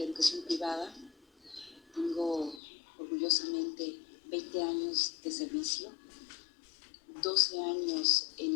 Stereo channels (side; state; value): right; drops out; at 2.6 s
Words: educación privada. Tengo orgullosamente 20 años de servicio, 12 años